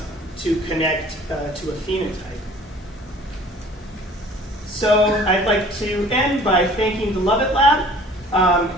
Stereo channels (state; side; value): normal; both; correlation 0.50